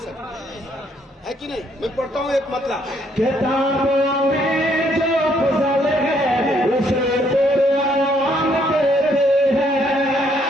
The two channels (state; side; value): normal; both; correlation 0.69